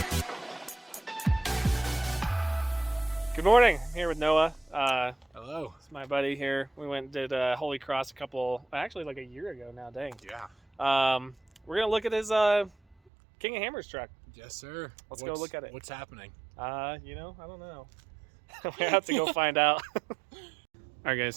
Good morning. I'm here with Noah. Hello. It's my buddy here. We went and did Holy Cross actually like a year ago now, dang. Yeah. We're going to look at his King of Hammers truck. Yes, sir. Let's go look at it. What's happening? I don't know. We have to go find out. All right,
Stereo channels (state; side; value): drops out; left; at 13.0 s